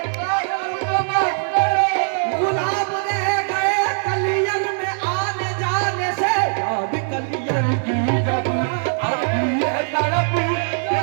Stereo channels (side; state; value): left; silent; digital silence